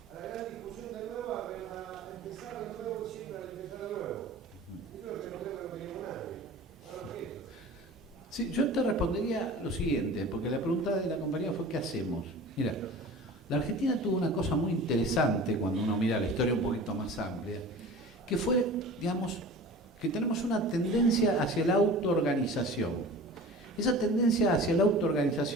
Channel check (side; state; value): both; normal; correlation 0.39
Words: la gran discusión de nuevo, a empezar de nuevo, siempre a empezar de nuevo. Eso es lo que no creo que no queríamos nadie. Ahora qué. Sí, yo te respondería lo siguiente, porque la pregunta de la compañía fue ¿qué hacemos? Mira, la Argentina tuvo una cosa muy interesante cuando uno mira la historia un poquito más amplia, que fue, digamos, que tenemos una tendencia hacia la autoorganización. Esa tendencia hacia la